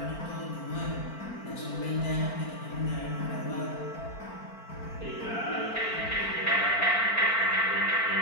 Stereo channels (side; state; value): right; late; 4.4 ms